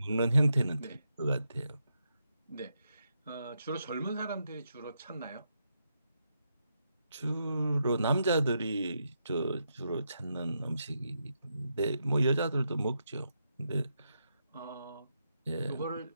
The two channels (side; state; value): both; inverted; correlation -0.82